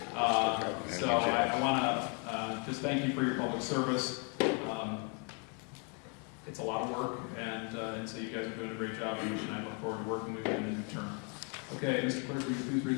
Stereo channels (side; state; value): right; quieter; 37.1 dB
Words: So I want to just thank you for your public service. It's a lot of work, and so you guys are doing a great job, and I look forward to working with you in the new term. Okay, Mr. Clerk, will you please read